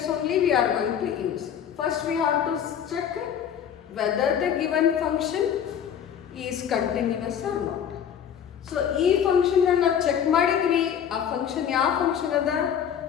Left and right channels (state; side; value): quieter; right; 8.7 dB